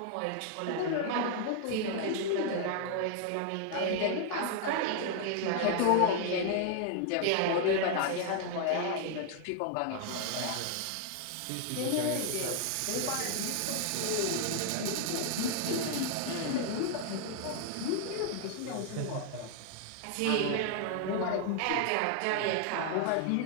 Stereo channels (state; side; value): different; both; correlation 0.00